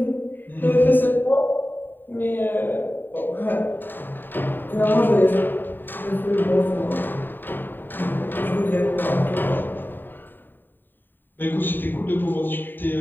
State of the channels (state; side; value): late; right; 0.093 ms